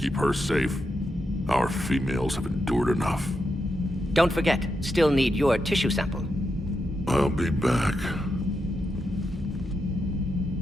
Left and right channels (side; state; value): both; normal; correlation 0.85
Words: her safe. Our females have endured enough. Don't forget, still need your tissue sample. I'll be back.